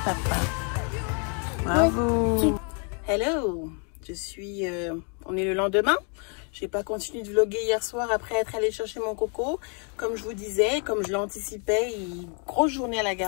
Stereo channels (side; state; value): right; quieter; 39.6 dB